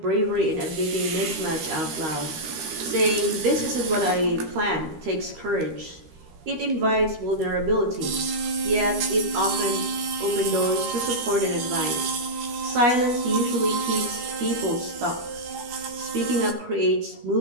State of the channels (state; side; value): late; left; 13 ms